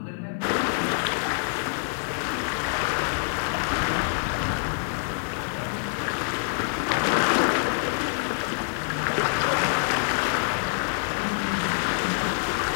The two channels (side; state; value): right; silent; digital silence